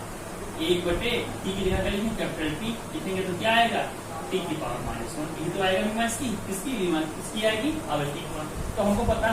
1/t की जगह करेंगे कैपिटल T लिखेंगे तो क्या आएगा, t की पावर -1। ये तो आएगा बीमा इसकी, किसकी बीमा, इसकी आएगी आवृत्ति की बीमा। तो हमको पता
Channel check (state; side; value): identical; both; correlation 1.00